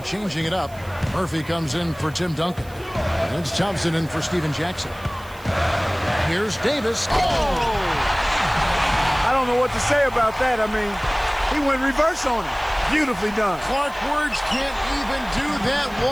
it up. Murphy comes in for Tim Duncan. And it's Thompson in for Steven Jackson. Here's Davis. Oh! I don't know what to say about that. I mean, he went reverse on it. Beautifully done. Clark Words can't even do that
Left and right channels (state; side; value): noise; right; hiss, 23 dB below the sound